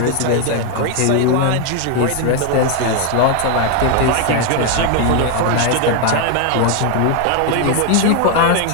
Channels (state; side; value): different; both; correlation 0.01